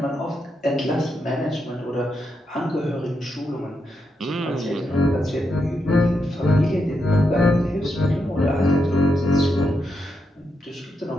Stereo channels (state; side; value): normal; both; correlation 0.83